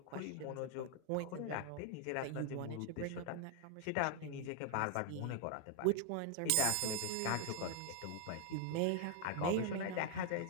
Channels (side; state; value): both; different; correlation 0.00